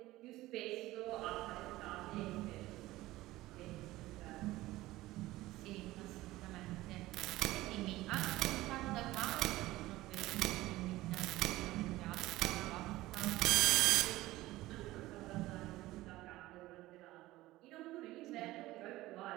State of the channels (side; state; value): left; quieter; 17.5 dB